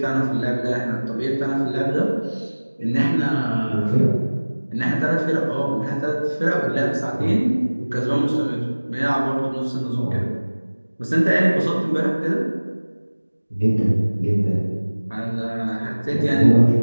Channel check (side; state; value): both; inverted; correlation -1.00